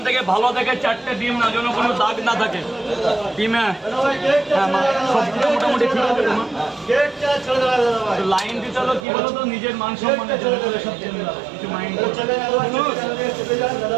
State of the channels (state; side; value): drops out; left; at 9.1 s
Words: থেকে ভালো থেকে 4টে ডিম না, যেন কোনো দাগ না থাকে ডিমে। হ্যাঁ মা, সবগুলো মোটামুটি ঠিক আছে। লাইন দিতে হলো কি বলো তো, নিজের মান সম্মানের জন্য কিছু মাইন্ড